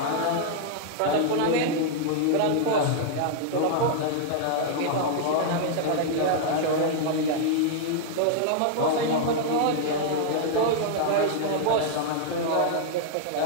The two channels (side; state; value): both; different; correlation -0.01